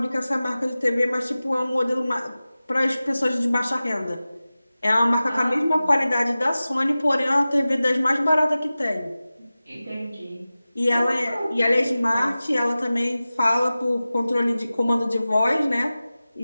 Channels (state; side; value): inverted; both; correlation -0.96